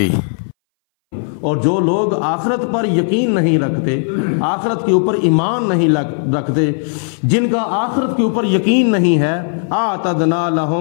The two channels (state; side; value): silent; right; 63 dB below the other